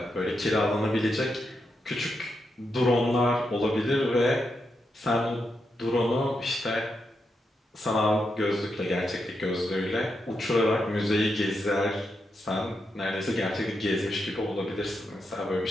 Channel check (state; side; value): normal; both; correlation 0.84